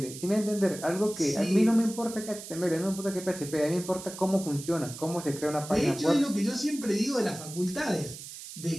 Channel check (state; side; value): noise; right; hiss, 12 dB below the sound